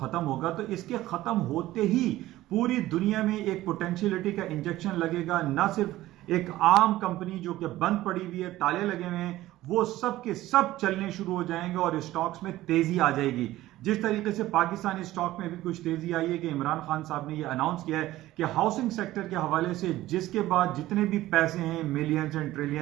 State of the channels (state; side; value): quieter; left; 15.9 dB